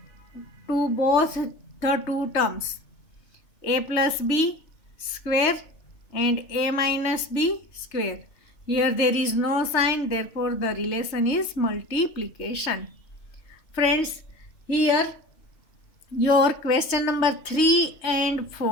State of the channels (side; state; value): right; late; 3.2 ms